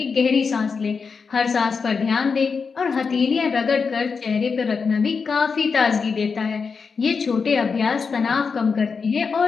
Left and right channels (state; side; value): quieter; right; 5.3 dB